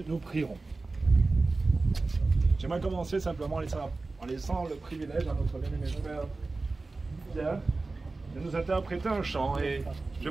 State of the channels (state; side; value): quieter; left; 3.5 dB